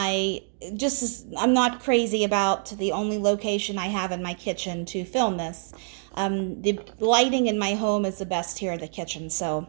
not crazy about the only location I have in my kitchen to film this. The lighting in my home is the best here in the kitchen,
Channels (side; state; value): left; silent; 61 dB below the other